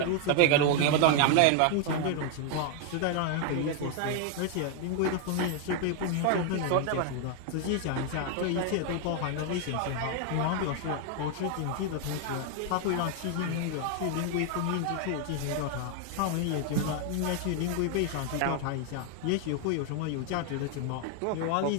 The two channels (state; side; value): different; both; correlation 0.00